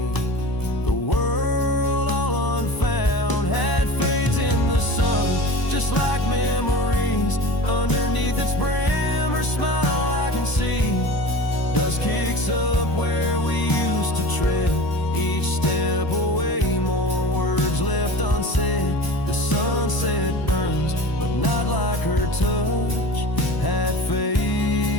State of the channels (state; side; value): late; right; 1.0 ms